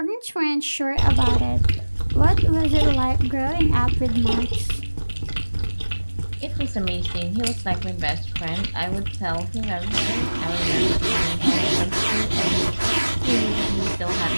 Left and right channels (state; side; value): inverted; both; correlation -1.00